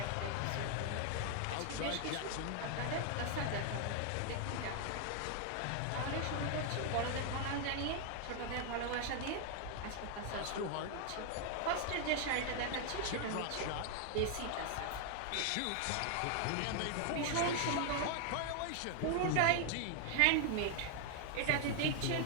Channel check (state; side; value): different; both; correlation 0.00